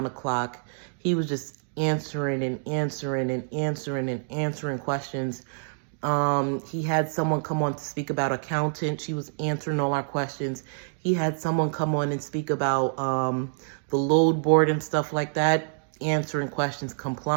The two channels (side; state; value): left; silent; digital silence